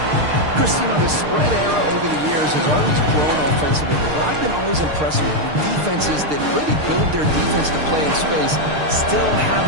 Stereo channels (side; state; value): left; late; 6.6 ms